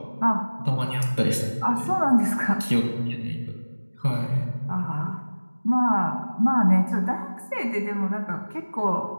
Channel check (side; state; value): both; inverted; correlation -1.00